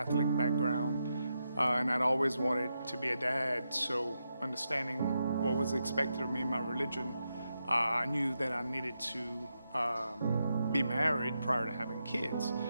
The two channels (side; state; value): both; inverted; correlation -0.85